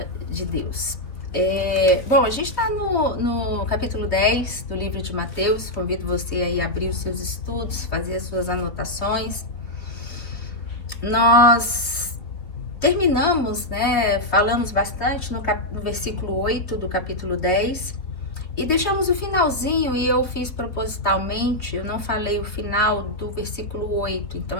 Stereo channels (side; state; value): right; late; 3.4 ms